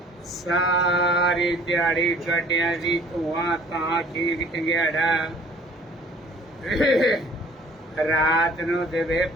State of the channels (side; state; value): both; normal; correlation 0.54